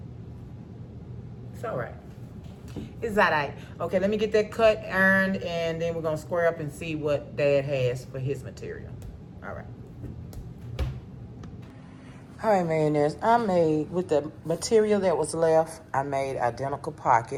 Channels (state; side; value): identical; both; correlation 1.00